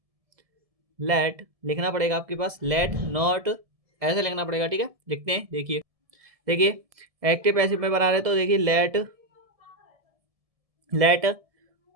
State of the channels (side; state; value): left; late; 1.7 ms